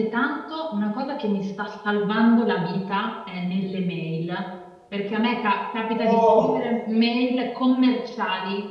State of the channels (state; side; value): identical; both; correlation 1.00